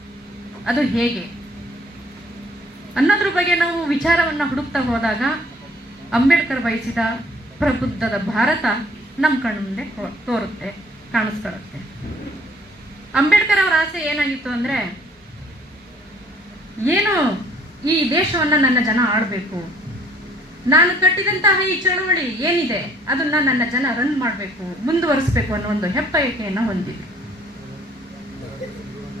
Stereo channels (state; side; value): normal; both; correlation 0.59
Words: ಅದು ಹೇಗೆ ಅನ್ನೋದ್ರ ಬಗ್ಗೆ ನಾವು ವಿಚಾರವನ್ನು ಹುಡುಕ್ತಾ ಹೋದಾಗ ಅಂಬೇಡ್ಕರ್ ಬಯಸಿದ ಪ್ರಬುದ್ಧದ ಭಾರತ ನಮ್ಮ ಕಣ್ಣು ಮುಂದೆ ತೋರುತ್ತೆ, ಕಾಣಿಸ್ಕೊಳ್ಳುತ್ತೆ. ಅಂಬೇಡ್ಕರ್ ಅವರ ಆಸೆ ಏನಾಗಿತ್ತು ಅಂದರೆ, ಏನು ಈ ದೇಶವನ್ನು ನನ್ನ ಜನ ಆಳಬೇಕು, ನಾನು ಕಟ್ಟಿದಂತಹ ಈ ಚಳವಳಿ ಏನಿದೆ ಅದನ್ನ ನನ್ನ ಜನ ರನ್ ಮಾಡಬೇಕು, ಮುಂದುವರಿಸಬೇಕು ಅನ್ನೋ ಒಂದು ಹೆಬ್ಬಯಕೆಯನ್ನು ಹೊಂದಿದೆ.